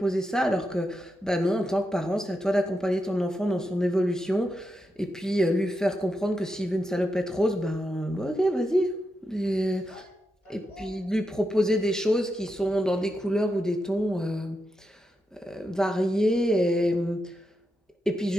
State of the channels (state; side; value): normal; both; correlation 0.86